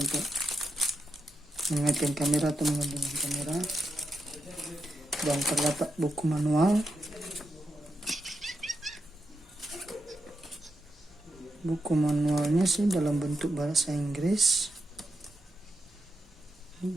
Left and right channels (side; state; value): both; normal; correlation 0.86